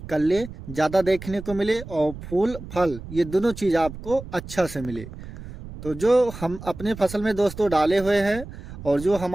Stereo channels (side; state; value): right; noise; rumble, 13 dB below the sound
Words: कल्ले ज़्यादा देखने को मिले और फूल फल ये दोनों चीज़ आपको अच्छा से मिले। तो जो हम अपने फसल में दोस्तों डाले हुए हैं और जो